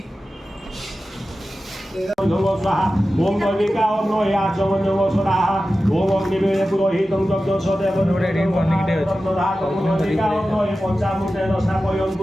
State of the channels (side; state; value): both; normal; correlation 0.94